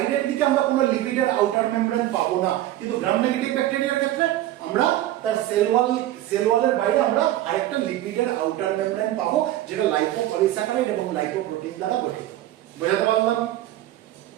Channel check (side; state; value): left; quieter; 14.2 dB